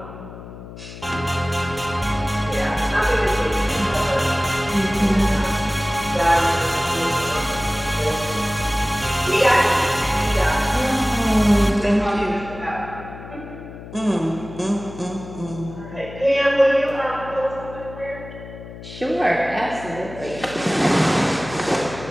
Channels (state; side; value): noise; left; hum, 14 dB below the sound